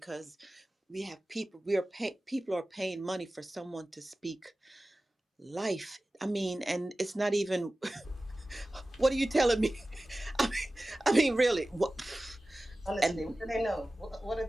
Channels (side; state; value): both; normal; correlation 0.96